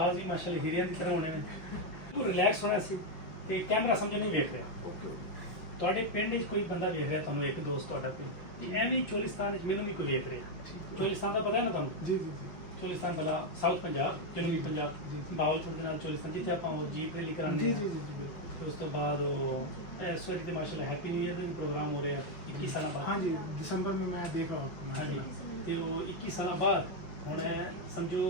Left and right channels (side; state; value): right; late; 5.4 ms